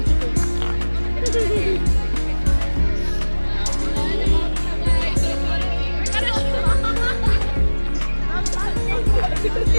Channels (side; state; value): both; inverted; correlation -1.00